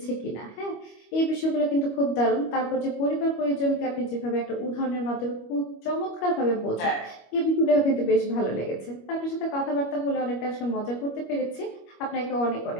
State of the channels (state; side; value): late; right; 25 ms